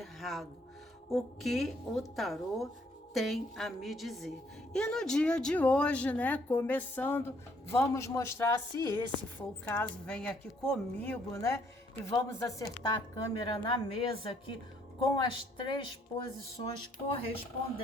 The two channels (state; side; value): normal; both; correlation 0.67